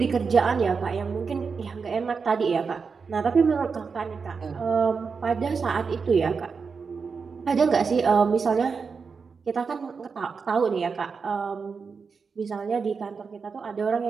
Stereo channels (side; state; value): left; quieter; 5.3 dB